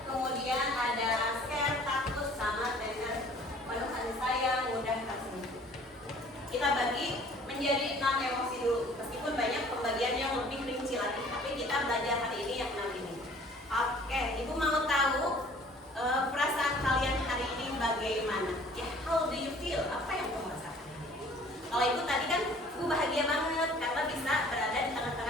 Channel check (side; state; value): both; normal; correlation 0.52